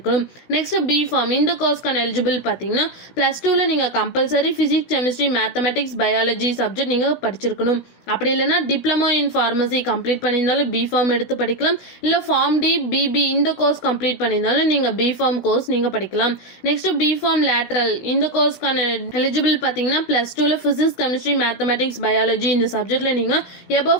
நெக்ஸ்ட் பிஃபார்ம் இந்த கோர்ஸ்க்கான எலிஜிபிள் பார்த்தீங்கன்னா +2ல நீங்கள் compulsory physics, chemistry, mathematics, biology subject நீங்கள் படிச்சிருக்கணும். அப்படி இல்லைன்னா டிப்ளமோ இன் ஃபார்மசி கம்ப்ளீட் பண்ணியிருந்தாலும் பிஃபார்ம் எடுத்து படிக்கலாம். இல்லை ஃபார்ம் டி, பிபி இந்த கோர்ஸ் கம்ப்ளீட் பண்ணியிருந்தாலும் நீங்கள் பிஃபார்ம் கோர்ஸ் நீங்கள் படிக்கலாம். நெக்ஸ்ட் பிஃபார்ம் லேட்ரல் இந்த கோர்ஸ்க்கான எலிஜிபிள் பார்த்தீங்கன்னா +2ல ஃபிசிக்ஸ், கெமிஸ்ட்ரி, மேத்தமெட்டிக்ஸ், பயாலஜி இந்த சப்ஜெக்ட்ல நீங்கள் எபோவ்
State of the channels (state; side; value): late; right; 16 ms